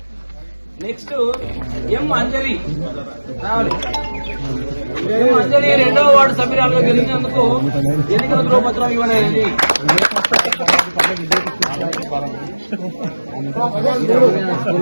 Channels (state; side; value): inverted; both; correlation -1.00